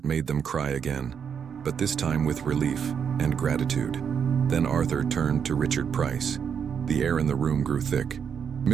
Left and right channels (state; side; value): quieter; left; 7.4 dB